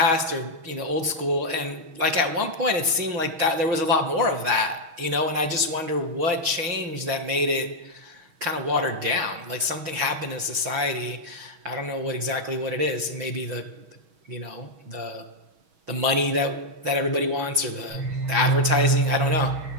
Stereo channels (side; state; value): left; late; 6.2 ms